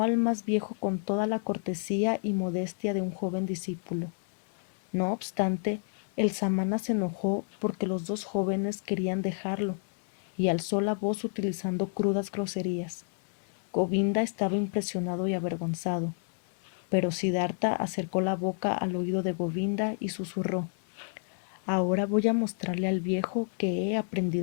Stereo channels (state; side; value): silent; right; 58 dB below the other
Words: al más viejo con toda la cortesía y modestia de un joven discípulo. No obstante, el samana se enojó porque los dos jóvenes querían dejarlo y alzó la voz utilizando crudas groserías. Govinda estaba impresionado y avergonzado, pero Siddhartha acercó la boca al oído de Govinda y susurró: Ahora voy a mostrarle al viejo que he